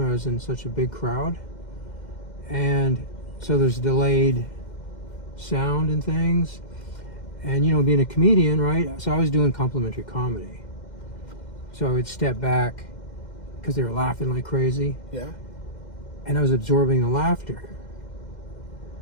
I was in such a big crowd, and so there's delayed sound and things. And, being a comedian, right? So I was doing complimentary comedy. So I would step back because they were laughing like crazy. Yeah. And I was absorbing the laughter.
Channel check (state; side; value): late; right; 2.1 ms